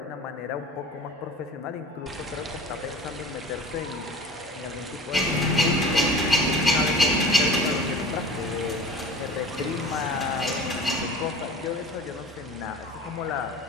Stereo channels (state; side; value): normal; both; correlation 0.40